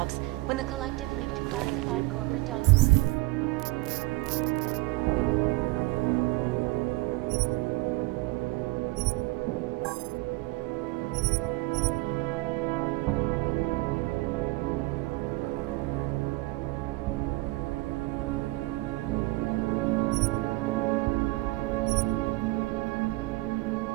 when the collective leaked classified corporate documents.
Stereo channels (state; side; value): quieter; left; 22.1 dB